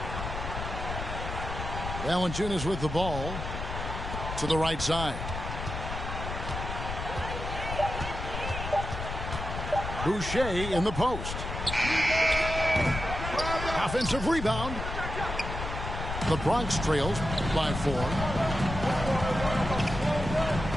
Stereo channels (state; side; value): noise; left; rumble, 6 dB below the sound